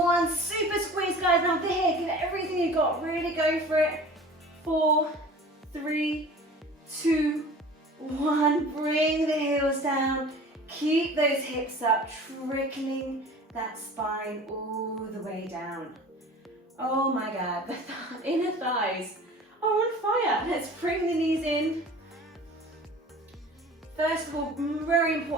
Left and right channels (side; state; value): both; normal; correlation 0.42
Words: Super squeeze, guys. Now here, give it everything you got. Really go for it. 4, 3, 2, 1. Bring the heels down. Keep those hips up, trickling that spine all the way down. Oh my God, the inner thighs are on fire. Let's bring the knees in. First of all, very